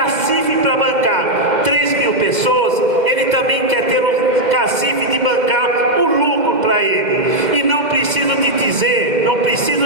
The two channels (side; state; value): left; late; 2.1 ms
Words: para bancar 3.000 pessoas, ele também quer ter o cacife de bancar o lucro para ele. E não preciso dizer,